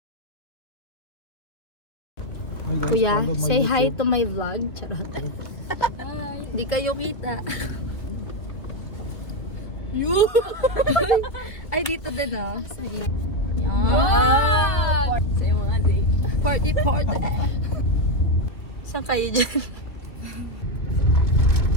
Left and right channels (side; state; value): right; late; 2.4 ms